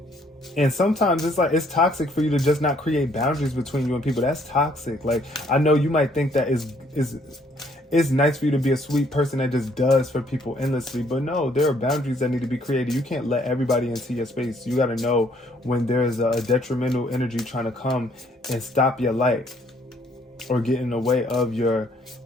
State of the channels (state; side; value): normal; both; correlation 0.65